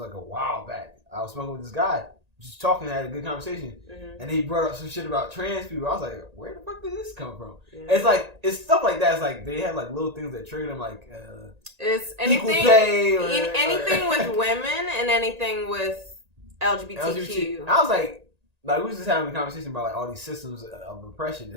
a while back. I was smoking with this guy, just talking, had a good conversation, and he brought up some shit about trans people. I was like, where the fuck did this come from? Yeah. It's like it's stuff like that. It's like they have like little things that trigger them, like. It's anything, anything with women and anything with LGBTQ. I was like we was just having a conversation about like all these systems of oppression,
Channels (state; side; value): late; left; 1.8 ms